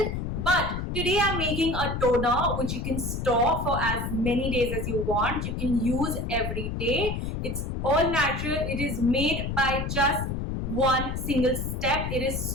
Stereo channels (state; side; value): noise; left; rumble, 3 dB below the sound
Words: But today I'm making a toner which you can store for as many days as you want. You can use every day. It's all natural. It is made by just one single step. It is